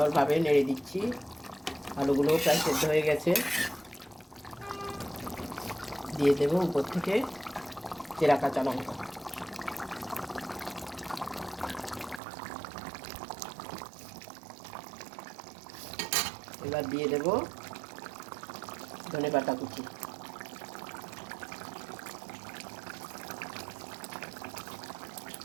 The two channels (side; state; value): left; drops out; at 12.2 s